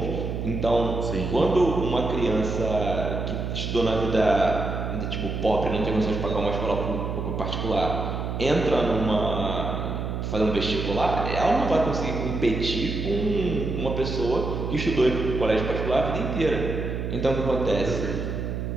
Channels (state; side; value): noise; right; hum, 3 dB below the sound